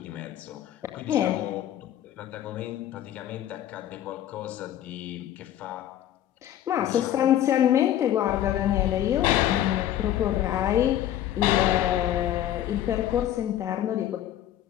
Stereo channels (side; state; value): right; quieter; 11.9 dB